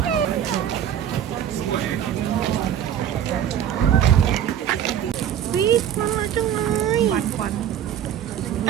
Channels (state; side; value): quieter; left; 9.9 dB